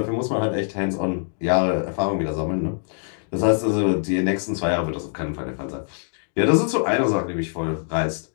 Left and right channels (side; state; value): right; silent; digital silence